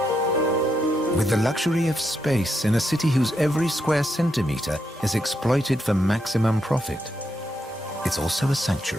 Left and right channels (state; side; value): normal; both; correlation 0.81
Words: With the luxury of space in a city whose every square centimeter is exploited for maximum profit, it's also a